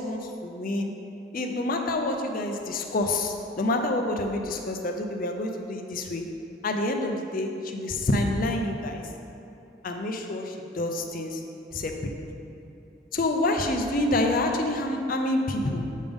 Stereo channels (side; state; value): both; normal; correlation 0.41